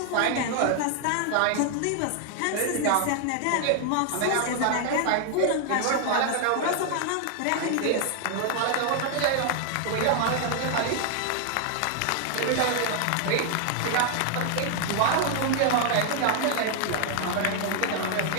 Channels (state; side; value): different; both; correlation 0.00